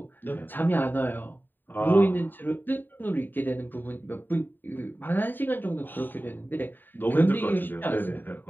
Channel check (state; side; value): late; right; 0.091 ms